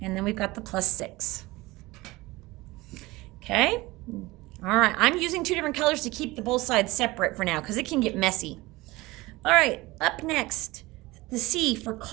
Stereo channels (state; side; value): quieter; left; 20.6 dB